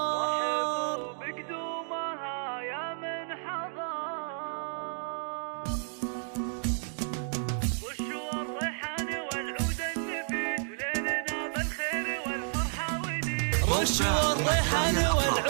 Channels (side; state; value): left; silent; digital silence